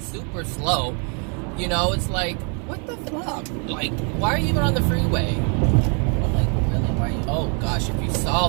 slow. It's like, what the fuck? Like, why are you even on the freeway? I'm like, really? Why are you? Oh gosh, if you saw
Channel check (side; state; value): left; quieter; 37.8 dB